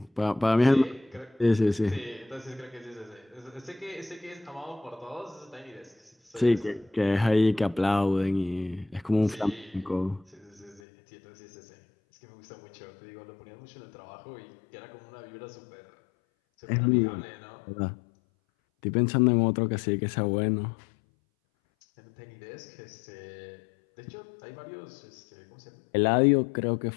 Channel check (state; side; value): drops out; right; at 10.8 s